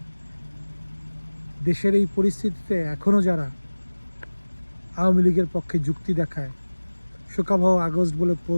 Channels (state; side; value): inverted; both; correlation -1.00